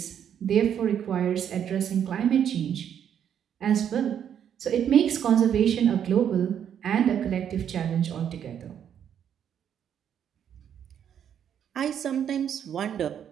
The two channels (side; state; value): left; quieter; 9.0 dB